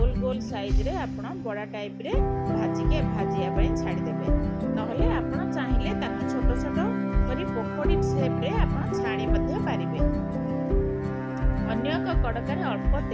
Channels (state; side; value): identical; both; correlation 1.00